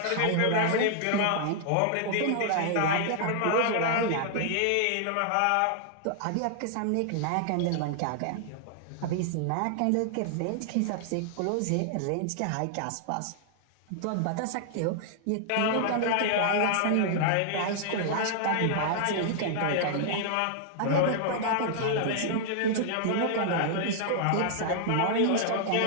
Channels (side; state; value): both; different; correlation -0.01